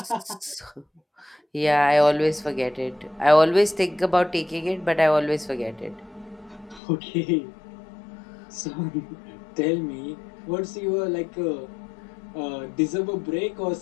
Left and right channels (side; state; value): right; drops out; at 6.8 s